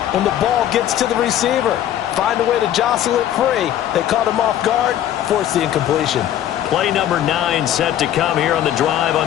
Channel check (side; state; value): right; quieter; 11.5 dB